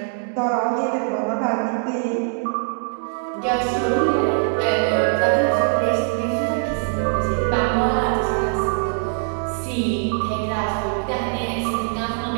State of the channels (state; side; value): silent; left; 60 dB below the other